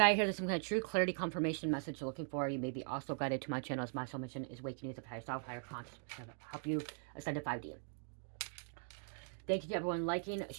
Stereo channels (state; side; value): silent; left; 51 dB below the other